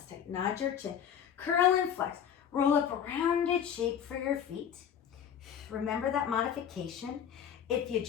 height. Nod your chin. Curl and flex. Roll up a rounded shape for your feet. Remember that modification. If you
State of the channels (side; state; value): right; quieter; 8.7 dB